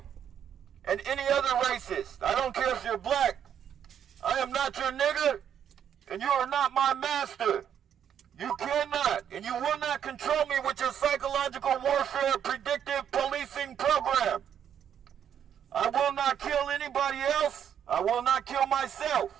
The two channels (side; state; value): left; quieter; 9.0 dB